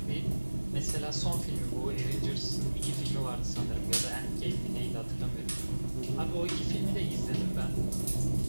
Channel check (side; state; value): both; inverted; correlation -1.00